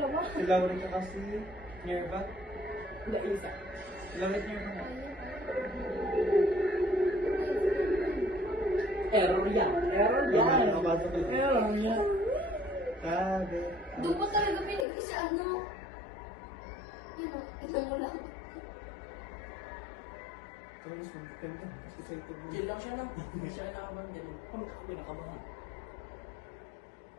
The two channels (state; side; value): drops out; right; at 14.9 s